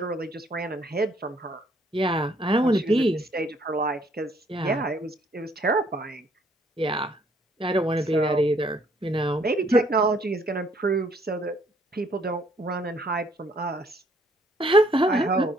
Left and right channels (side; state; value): both; normal; correlation 0.65